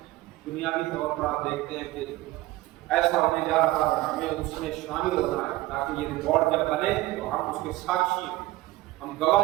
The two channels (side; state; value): left; quieter; 17.9 dB